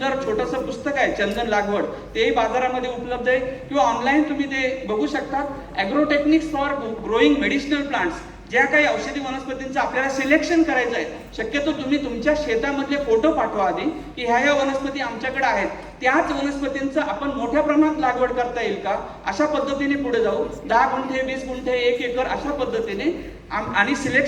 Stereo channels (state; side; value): identical; both; correlation 1.00